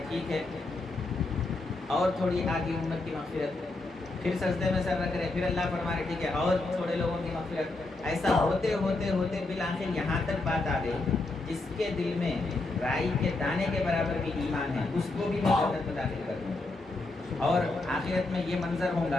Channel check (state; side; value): quieter; right; 3.1 dB